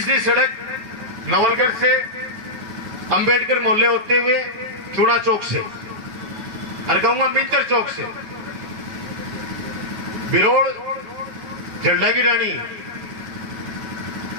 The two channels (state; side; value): late; left; 9.3 ms